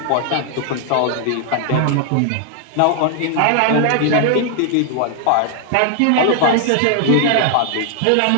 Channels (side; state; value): both; different; correlation 0.00